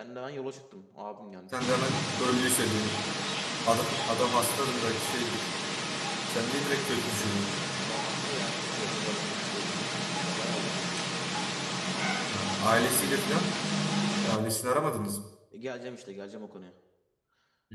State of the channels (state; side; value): identical; both; correlation 1.00